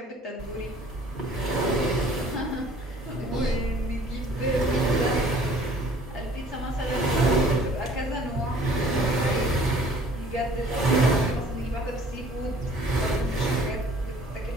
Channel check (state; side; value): normal; both; correlation 0.53